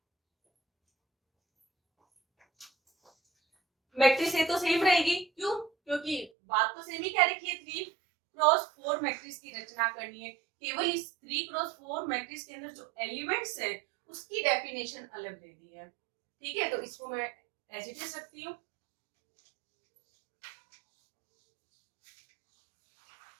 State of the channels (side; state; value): left; drops out; at 6.3 s